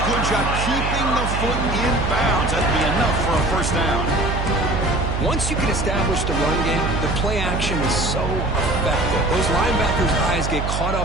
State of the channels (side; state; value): right; noise; hum, 2 dB below the sound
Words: Good job keeping the foot in bounds. That'd be enough for a first down. Once you can establish the run game, the play action is so effective. Those linebackers' eyes get caught